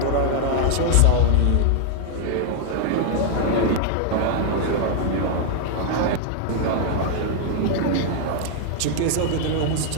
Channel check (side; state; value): both; different; correlation 0.00